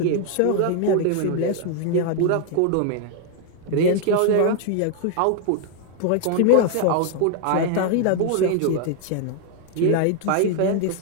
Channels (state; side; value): different; both; correlation 0.00